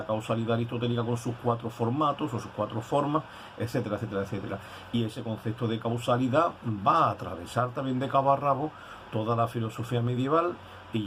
causalidad aristotélica con sus 4 formatos o sus 4 formas, etcétera, etcétera, etcétera. Y ese concepto de causalidad va a atravesar también de cabo a rabo toda la filosofía medieval, y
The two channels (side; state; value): both; identical; correlation 1.00